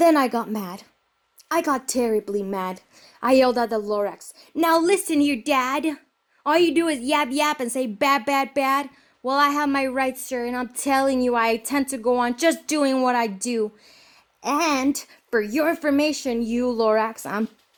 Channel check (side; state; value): both; identical; correlation 1.00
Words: I got mad. I got terribly mad. I yelled at the lorax, now listen here, Dad. All you do is yap yap and say bad, bad, bad. Well, I have my rights, sir, and I'm telling you I intend to go on just doing what I do. And for your information, you lorax, I'm